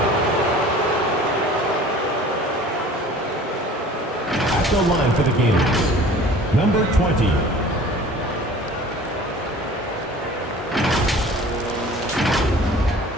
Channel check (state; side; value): normal; both; correlation 0.46